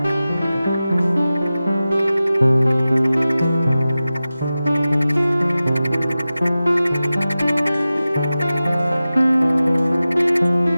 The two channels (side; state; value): both; inverted; correlation -0.95